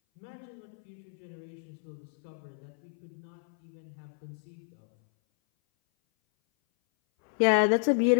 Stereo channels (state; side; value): silent; right; 57 dB below the other